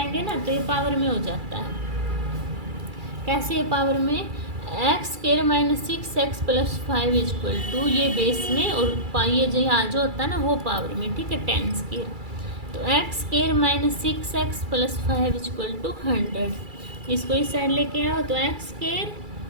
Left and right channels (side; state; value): left; late; 2.3 ms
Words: ना, तो ये पावर में हो जाता है। कैसे ये पावर में, x square minus 6x plus 5 equal to, ये बेस में और ये जो यहाँ जो होता है ना वो पावर में, ठीक है 10 स्क्वायर। तो x square minus 6x plus 5 equal to 100, इसको इस साइड लेके आओ, तो एक्स स्क्वायर